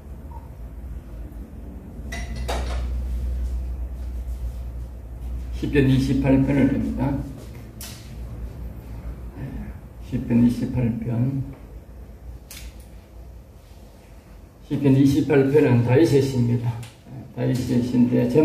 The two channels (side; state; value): both; identical; correlation 1.00